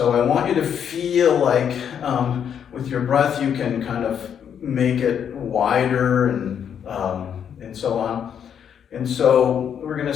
I want you to feel like with your breath you can kind of make it wider and so on. And so we're going to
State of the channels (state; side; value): quieter; right; 8.3 dB